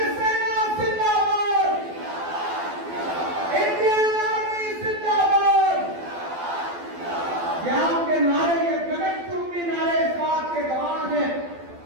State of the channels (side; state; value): left; late; 12 ms